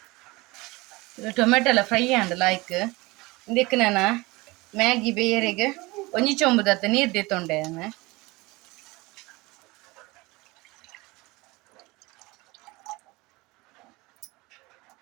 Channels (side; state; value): left; quieter; 22.8 dB